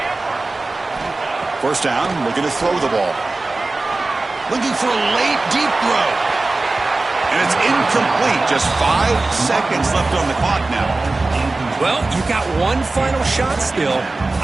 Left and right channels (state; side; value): quieter; left; 3.3 dB